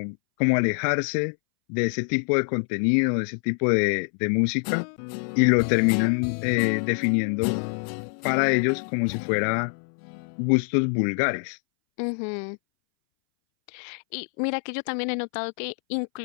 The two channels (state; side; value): silent; right; 62 dB below the other